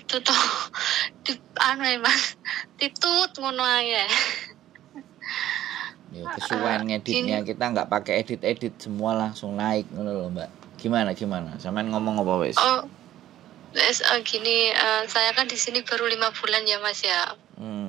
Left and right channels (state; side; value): quieter; left; 12.9 dB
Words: toh. Mas, titut ngono ae. Ya, kesuwen ngeditnya kita nggak pakai edit semua langsung naik ngono loh Mbak. Gimana? Sampean ngomong apa wes? Oh, gini, saya kan di sini baru 5 bulan ya Mas ya.